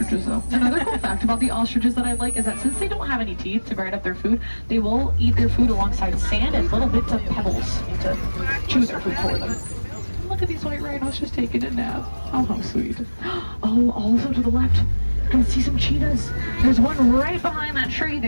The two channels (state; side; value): inverted; both; correlation -1.00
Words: though. Another cool fact about the ostriches that I like is that since they don't have any teeth to grind up their food, they will eat their food alongside sand and little bits of pebbles to chew their food for them. Look at these white rhinos just taking a nap. Oh, how sweet. Oh, also to the left, I can see some cheetahs. There's one right behind that tree